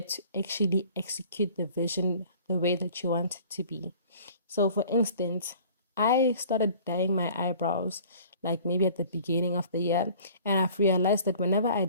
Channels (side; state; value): both; inverted; correlation -0.49